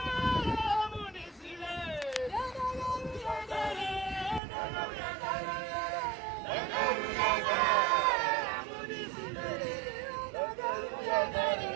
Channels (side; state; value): left; drops out; at 4.4 s